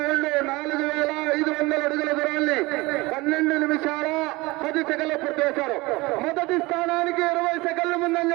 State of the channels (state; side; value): quieter; left; 22.5 dB